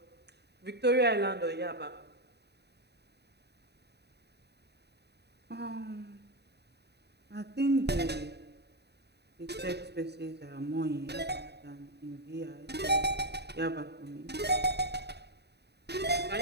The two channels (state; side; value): late; left; 0.48 ms